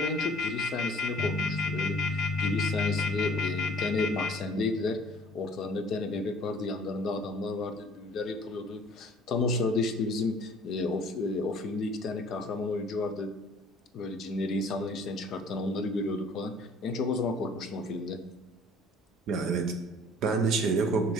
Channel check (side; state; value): both; normal; correlation 0.53